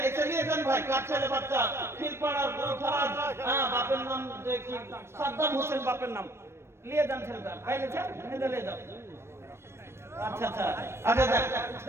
এসে নিয়ে যান ভাই। কার ছেলে বাচ্চা? ফিলপাড়ার গুলফরাজ। হ্যাঁ, বাপের নাম যে কি? সাদ্দাম হোসেন বাপের নাম। নিয়ে যান ছেলেটা, ভাই নিয়ে যান, নিয়ে যাও। আচ্ছা আচ্ছা আচ্ছা,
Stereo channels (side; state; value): left; late; 0.12 ms